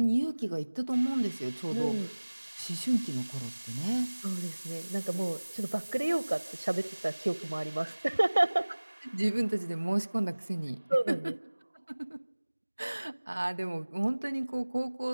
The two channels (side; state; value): both; inverted; correlation -1.00